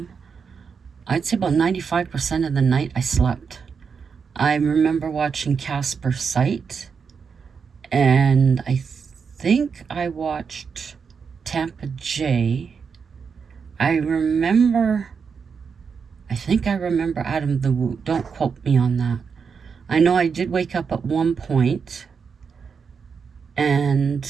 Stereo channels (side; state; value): left; quieter; 5.9 dB